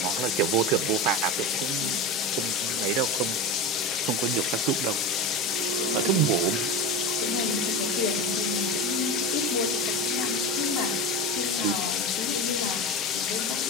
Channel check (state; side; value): normal; both; correlation 0.24